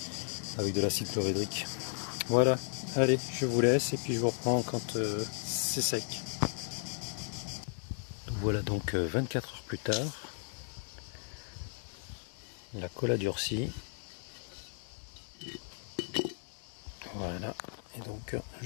avec de l'acide chlorhydrique. Voilà, allez, je vous laisse et puis je vous reprends quand c'est sec. Voilà donc 24 heures plus tard. La colle a durci. Voilà, et donc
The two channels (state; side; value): silent; right; digital silence